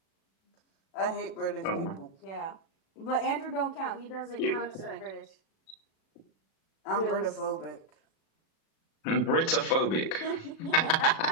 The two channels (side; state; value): right; late; 37 ms